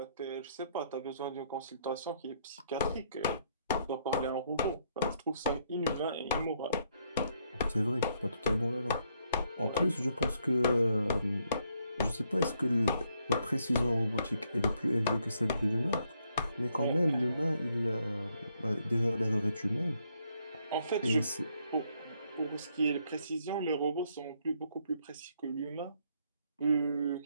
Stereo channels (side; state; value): both; inverted; correlation -0.72